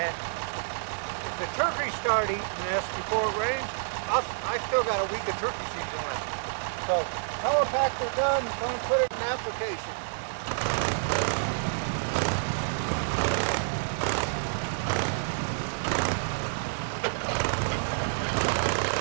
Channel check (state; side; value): silent; left; digital silence